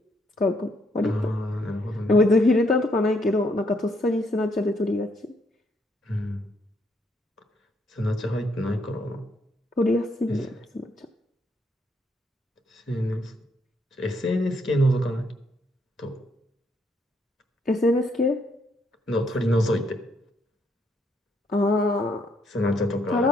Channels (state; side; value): normal; both; correlation 0.72